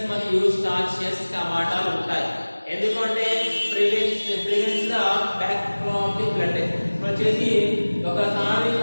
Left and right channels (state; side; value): inverted; both; correlation -1.00